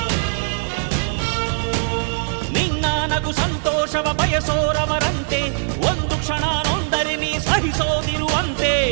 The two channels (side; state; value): left; silent; digital silence